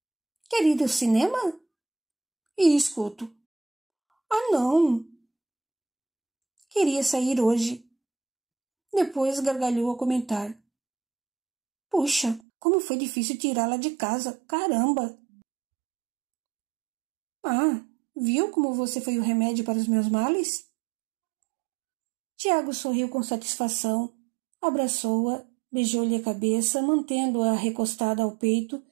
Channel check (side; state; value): left; drops out; at 12.4 s